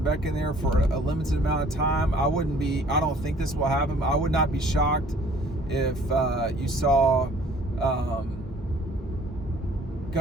Beck in there for a limited amount of time. I don't think this will happen. I would not be shocked if you saw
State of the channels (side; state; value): both; normal; correlation 0.54